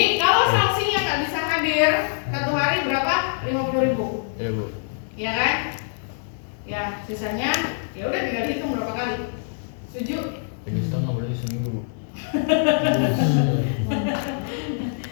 kalau saksinya nggak bisa hadir, satu hari berapa? 50.000. Iya, Bu. Ya kan? Ya, sisanya ya udah tinggal hitung berapa kali. Setuju? Jadi setengah berarti seminggu.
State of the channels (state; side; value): silent; right; digital silence